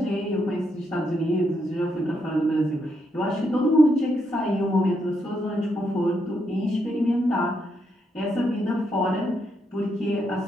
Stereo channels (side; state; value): both; normal; correlation 0.79